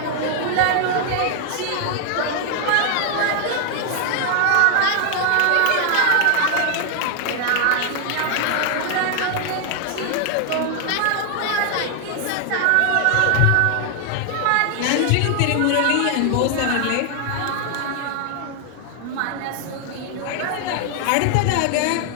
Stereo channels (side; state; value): both; different; correlation 0.00